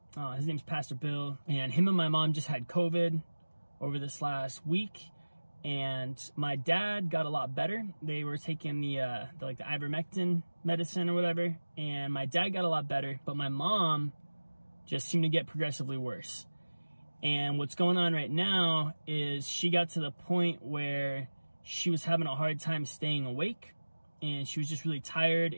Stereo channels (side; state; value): both; inverted; correlation -1.00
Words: His name's Pastor Bill, and him and my mom just had COVID over this last week, and my dad got a lot better. They were taking the ivermectin medicine or whatever, and my dad got a lot better, but my mom just seemed to get progressively worse. And what's going on right now is she got to the point where she was having a hard time staying awake, and she was just really tired,